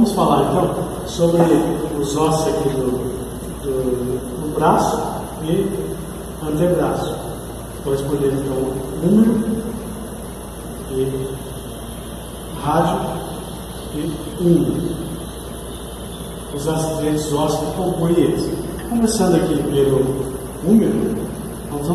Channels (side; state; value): both; identical; correlation 1.00